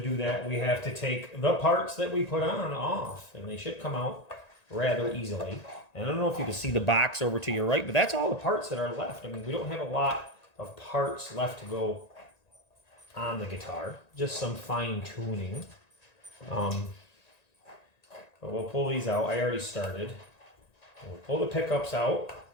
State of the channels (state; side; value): late; right; 1.9 ms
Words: that, we have to take the parts that we put on off, and they should come out rather easily. And I don't know if you can see the box over to your right, but that's all the parts that are left. I mean, we don't have a lot of parts left to go on the guitar, just some fine tuning. But we'll pull these out. I already started. We'll pull the pickups out,